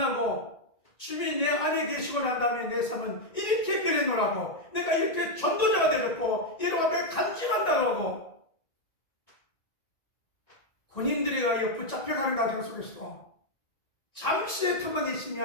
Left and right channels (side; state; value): right; late; 1.9 ms